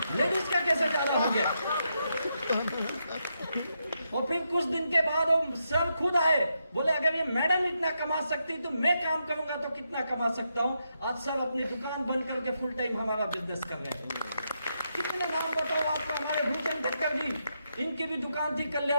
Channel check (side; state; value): both; inverted; correlation -0.82